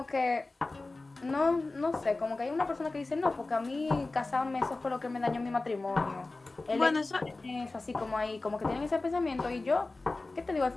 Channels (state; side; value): quieter; right; 3.3 dB